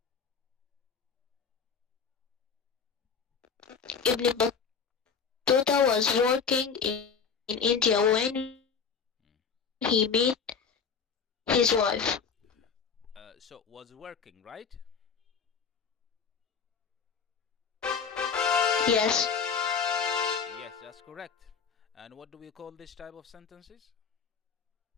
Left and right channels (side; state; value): right; quieter; 6.1 dB